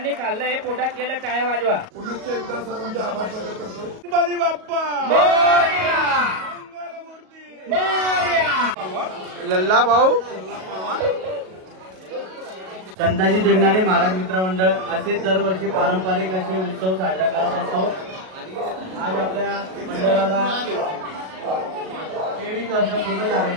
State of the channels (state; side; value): late; left; 38 ms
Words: खाल्लं हे पोटात गेलं टाळ्या वाजवा. पुनश्च एकदा सर्वांचे आभार प्रकट करतो. गणपती बाप्पा मोरया. लल्ला भाऊ. संताजी देवनाडे महाराज मित्र मंडळ असेच दरवर्षी पारंपरिक असे उत्सव साजरा करत असतो. आज आपल्या मंडळाला 23 वर्ष पूर्ण